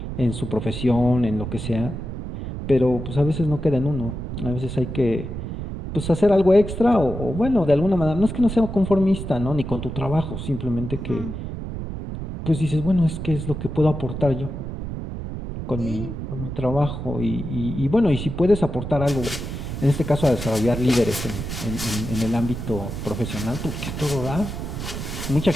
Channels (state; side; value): noise; right; rumble, 6 dB below the sound